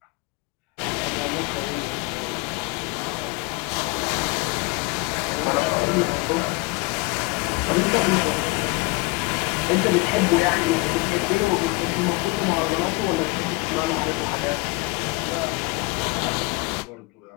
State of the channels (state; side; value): quieter; right; 25.5 dB